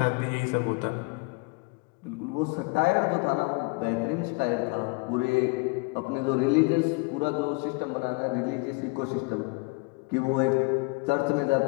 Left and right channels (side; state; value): right; quieter; 29.5 dB